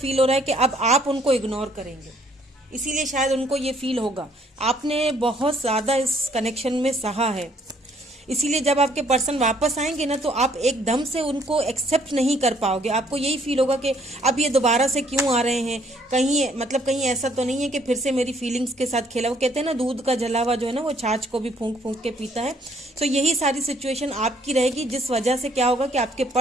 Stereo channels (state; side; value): normal; both; correlation 0.64